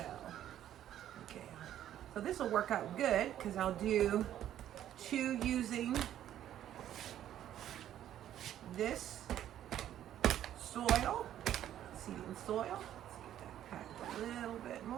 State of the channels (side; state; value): left; quieter; 11.4 dB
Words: okay, so this will work out good because I'll do 2 using this soil, seeding soil. Let's get that packed a little bit